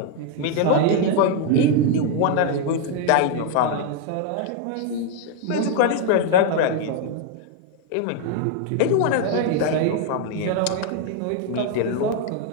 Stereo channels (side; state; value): both; different; correlation 0.01